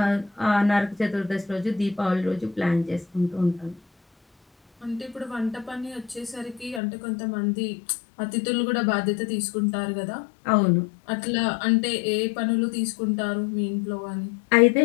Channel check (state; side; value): drops out; right; at 6.8 s